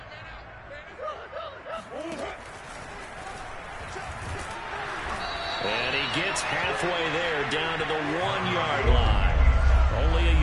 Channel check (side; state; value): both; identical; correlation 1.00